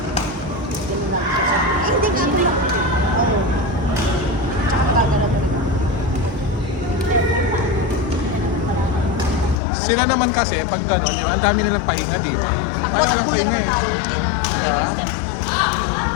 Sila naman kasi, pag gano'n, di ba, ang dami nilang pahinga, di ba? Tayo walang pahinga eh. Diba?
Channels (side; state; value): right; drops out; at 9.6 s